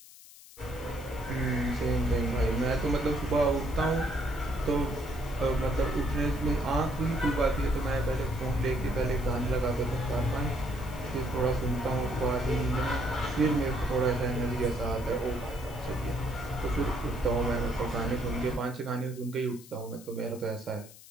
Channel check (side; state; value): left; noise; hiss, 20 dB below the sound